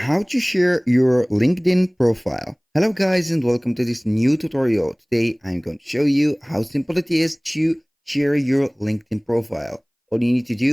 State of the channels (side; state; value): both; identical; correlation 1.00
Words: How to share your LinkedIn profile. Hello guys and welcome to this new tutorial. Today I'm going to show you how simple it is to share your LinkedIn profile. All you need to